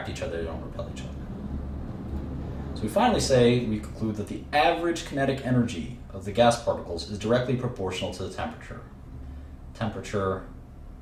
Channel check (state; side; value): identical; both; correlation 1.00